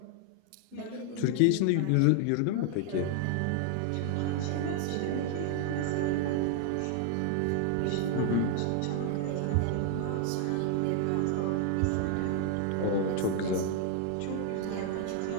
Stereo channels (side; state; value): both; different; correlation 0.00